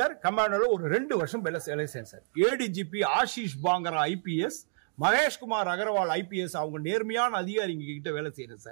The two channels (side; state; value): left; silent; digital silence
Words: கமாண்டோல ஒரு 2 வருஷம் வேலை செய்யறேன் sir. ADGP Ashish Pangra IPS, Maheshkumar Agarwal IPS, அவங்க நேர்மையான அதிகாரிங்க கிட்ட வேலை செய்யறேன்